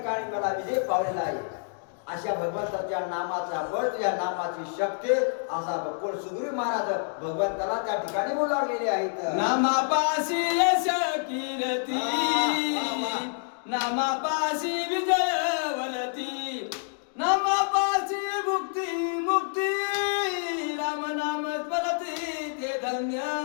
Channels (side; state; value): right; silent; digital silence